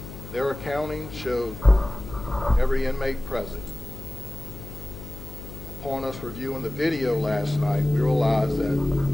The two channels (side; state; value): left; noise; hum, 12 dB below the sound